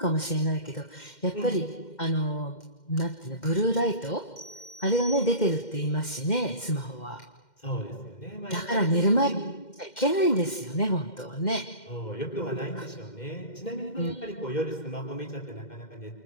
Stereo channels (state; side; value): late; right; 2.1 ms